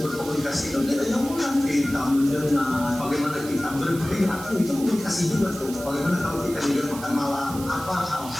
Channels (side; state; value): right; noise; hiss, 13 dB below the sound